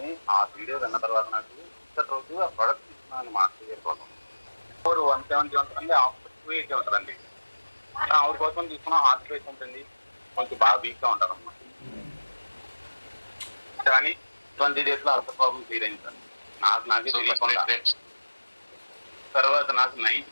ఆ వీడియో విన్న తర్వాత నాకు ఇప్పటి రోజు ఆ ప్రోడక్ట్ తీసుకున్నాను మా ఇయర్ ఫోన్ 170 ఉంటుందండి, ఆఫర్ 280 ఉంటుందండి. ఆవిడ కోసం తీసుకున్న హార్ట్ రేట్ ఉంటుంది, కొంచెం బాగా వీక్ గా ఉంటారు అన్నమాట. కానీ 20 days లో అల్సర్ ప్రాబ్లం క్లియర్ అయింది సార్. నాకే తెలియకుండా. తర్వాత నాకు 9th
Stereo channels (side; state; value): both; inverted; correlation -1.00